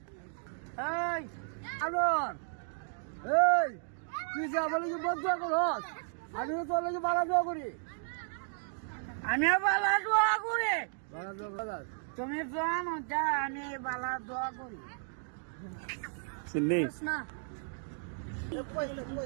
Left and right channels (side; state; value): left; silent; digital silence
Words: এই আলোর, এই তুই যা বলে কি বদুয়া করস? আমি তো তোর লাগে বালা দোয়া করি। আমিও বালা দোয়া করি। তুমি জানো যা আমি বালা দোয়া করি। চিন্নি না